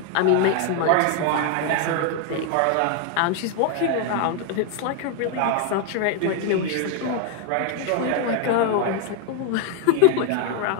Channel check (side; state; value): both; different; correlation 0.00